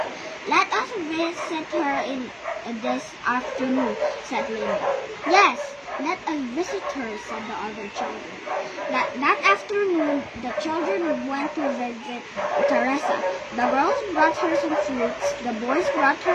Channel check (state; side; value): identical; both; correlation 1.00